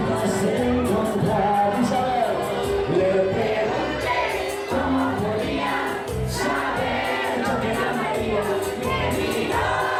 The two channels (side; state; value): both; identical; correlation 1.00